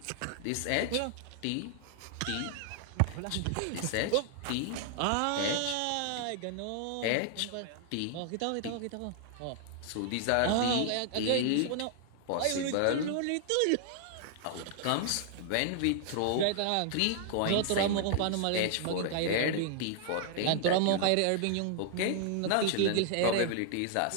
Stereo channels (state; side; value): different; both; correlation 0.00